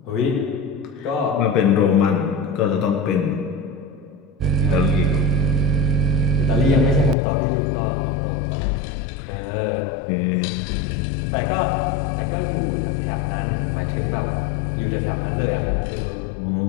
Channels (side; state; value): right; drops out; at 7.2 s